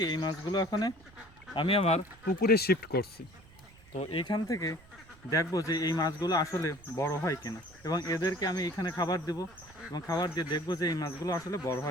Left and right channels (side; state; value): right; noise; rumble, 24 dB below the sound